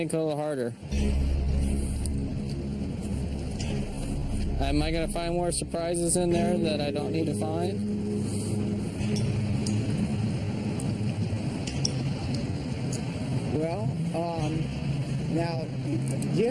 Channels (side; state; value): both; identical; correlation 1.00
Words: a little harder? Am I going to find more surprises in there that I don't need to find? Well, now, do you